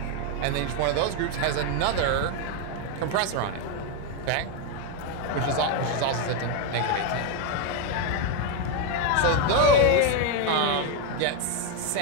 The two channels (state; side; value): different; both; correlation 0.02